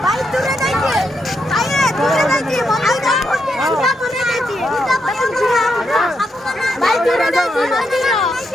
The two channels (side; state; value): both; normal; correlation 0.81